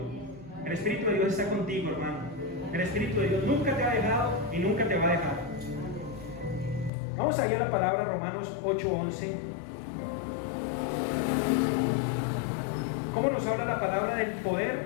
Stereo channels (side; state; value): right; drops out; at 6.9 s